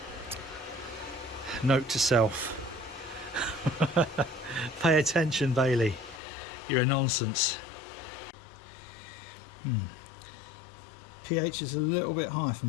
Note to self. Pay attention, Bailey. You're a nonsense. pH is a little bit high for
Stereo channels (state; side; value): drops out; right; at 6.2 s